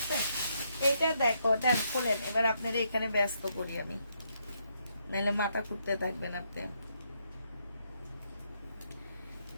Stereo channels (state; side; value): inverted; both; correlation -0.77